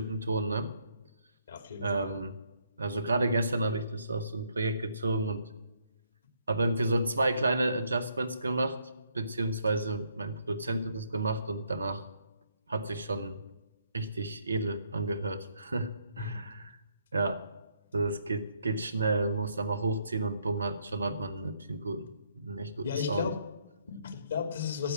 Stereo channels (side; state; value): both; inverted; correlation -0.71